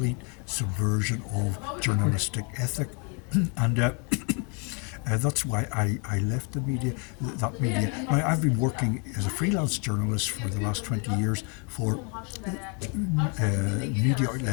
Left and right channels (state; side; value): quieter; right; 36.2 dB